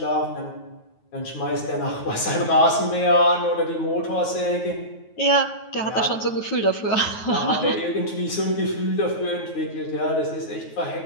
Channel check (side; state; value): right; late; 9.3 ms